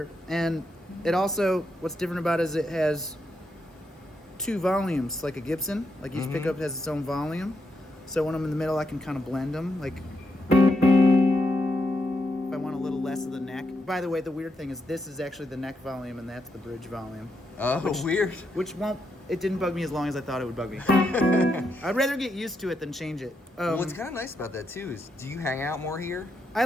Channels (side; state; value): both; normal; correlation 0.81